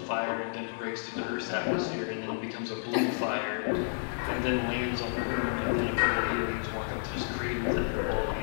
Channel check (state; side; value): silent; right; digital silence